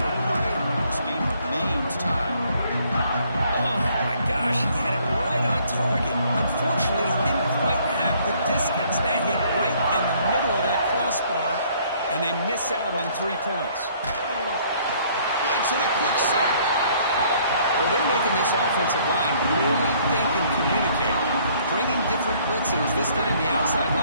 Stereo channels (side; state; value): both; inverted; correlation -0.62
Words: of play, this game remains tied. Oh, my gosh, he had it right on target. Unfortunately, he didn't quite have the distance. That hit right in the middle of that crossbar, and they miss out on 3 points. Blitz and a quick sack. Well, they're making this offensive line really think and communicate. Bringing different blitzes. This time the outside